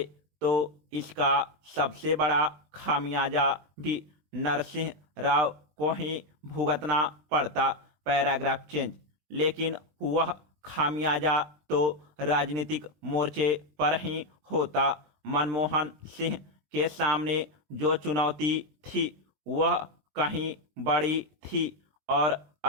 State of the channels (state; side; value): late; left; 20 ms